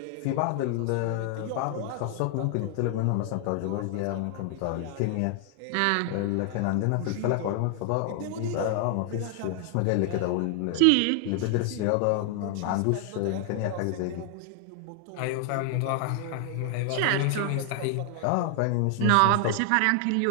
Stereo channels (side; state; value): both; different; correlation 0.00